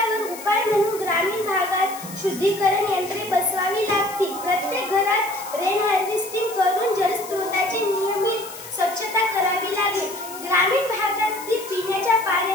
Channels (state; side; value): noise; left; hiss, 14 dB below the sound